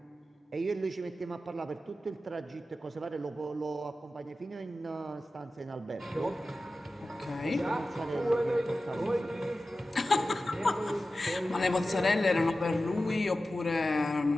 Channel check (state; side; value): normal; both; correlation 0.94